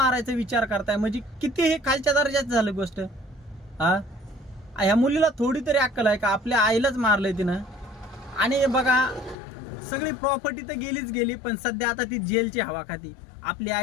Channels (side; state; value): right; drops out; at 9.3 s